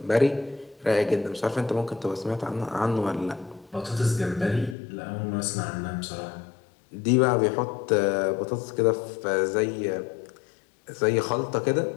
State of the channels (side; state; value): right; drops out; at 4.8 s